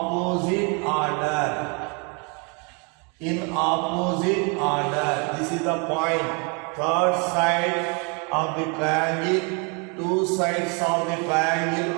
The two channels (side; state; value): left; quieter; 34.0 dB